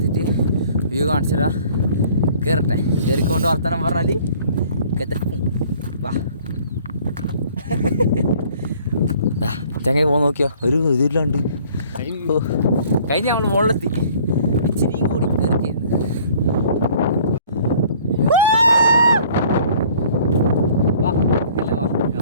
വ്യൂ കാണിച്ചിടാ. കയറട്ടെ. കയറിക്കൊണ്ട് വർത്തമാനം പറഞ്ഞാൽ വാ ചങ്ങ പോകാൻ നോക്കിയോ. ഒരു ഇതില്ലാണ്ട് കഴിഞ്ഞ് ഞങ്ങൾ മുകളിലെത്തി. ഇച്ചിരിയും കൂടി കയറിക്കായിരുന്നു.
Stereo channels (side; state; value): both; inverted; correlation -0.54